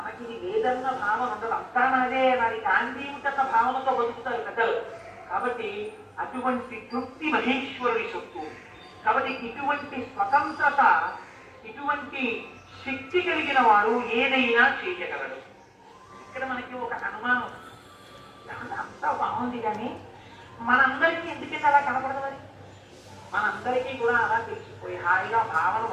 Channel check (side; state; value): both; identical; correlation 1.00